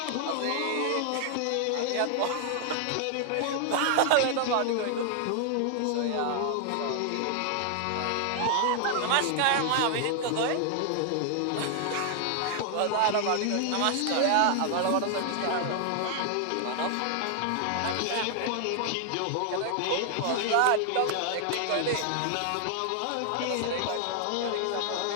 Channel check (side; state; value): both; different; correlation 0.00